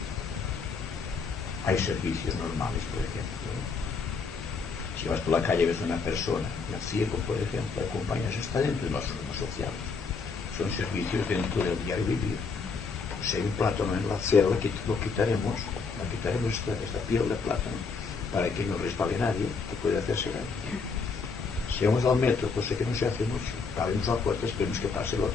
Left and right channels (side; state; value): right; quieter; 4.9 dB